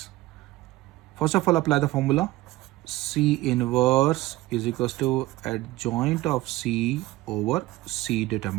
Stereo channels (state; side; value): quieter; left; 18.2 dB